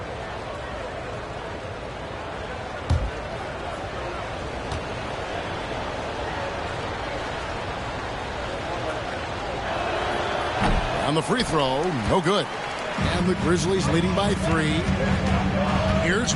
On the free throw, no good. And the Grizzlies leading by 3. Here's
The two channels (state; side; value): identical; both; correlation 1.00